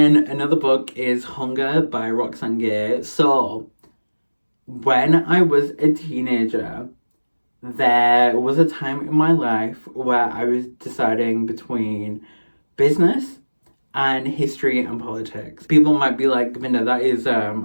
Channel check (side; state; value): both; inverted; correlation -1.00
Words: another book is Hunger by Roxane Gay. So when I was a teenager, there was a time in my life where I was deciding between business and history and politics. People might be like, Vinda, that is,